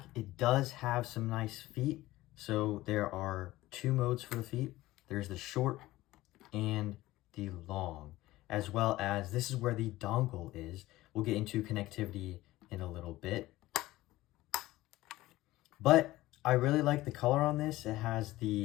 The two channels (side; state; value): right; quieter; 17.3 dB